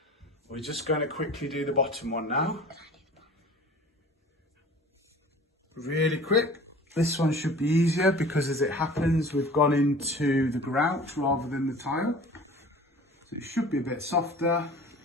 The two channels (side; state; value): both; normal; correlation 0.43